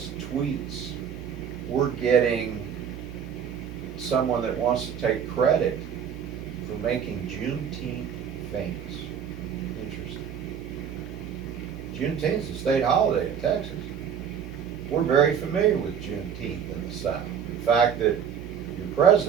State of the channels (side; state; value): left; quieter; 7.8 dB